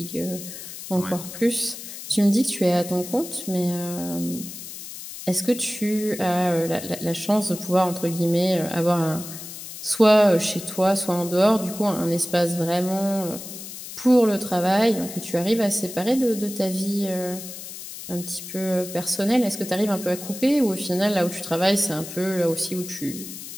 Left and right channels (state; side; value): noise; left; hiss, 11 dB below the sound